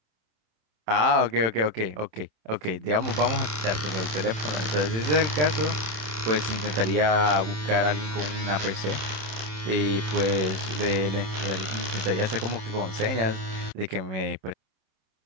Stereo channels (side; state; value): left; late; 27 ms